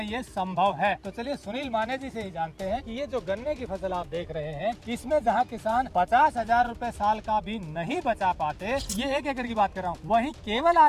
ये संभव है। तो चलिए सुनील माने जी से ही जानते हैं कि ये जो गन्ने की फसल आप देख रहे हैं, इसमें जहाँ किसान 50,000 रुपए साल का भी नहीं बचा पाते, ये 1 एकड़ की बात कर रहा हूँ, वहीं केवल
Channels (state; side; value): identical; both; correlation 1.00